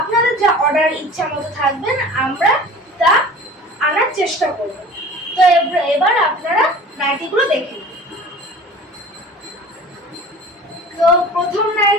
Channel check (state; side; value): normal; both; correlation 0.42